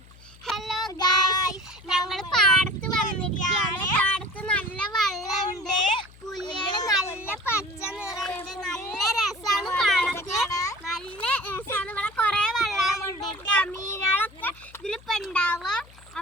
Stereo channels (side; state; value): left; noise; hum, 23 dB below the sound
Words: ഹലോ ഗൈസ്, ഞങ്ങൾ പാടത്ത് വന്നിരിക്കുകയാണ്. പാടത്ത് നല്ല വെള്ളമുണ്ട്, പുല്ലുകൾ നല്ല പച്ച നിറയുണ്ട്, നല്ല രസമാണ്. പാടത്ത് നല്ല രസമാണ്. ഇവിടെ കുറെ വെള്ളം കൊണ്ടിട്ട് മീനുകളൊക്കെ ഇതിലിപ്പോ ഉണ്ടാവുക.